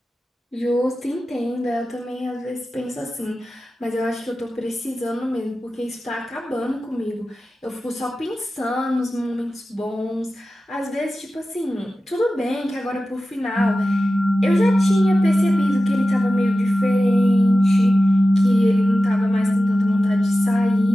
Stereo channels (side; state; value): both; normal; correlation 0.94